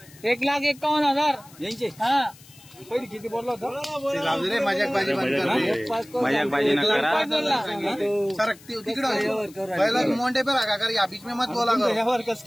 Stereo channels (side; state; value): left; noise; hiss, 23 dB below the sound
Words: 1,51,000 यांचे हा। पहिली किती बोलला होता? ते जाऊ दे रे, मजाकबाजी बंद कर रे। मजाकबाजी न करा। सरक तिकडं पहिला मोंडे पे रखा कर, या बीच में मत बोला करो। यावर कस